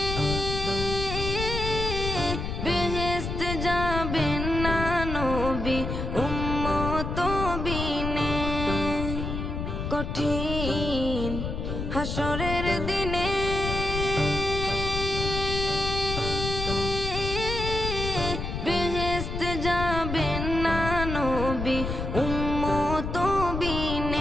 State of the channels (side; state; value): left; noise; rumble, 4 dB below the sound